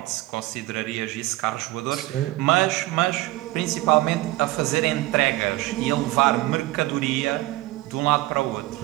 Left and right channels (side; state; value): left; quieter; 18.3 dB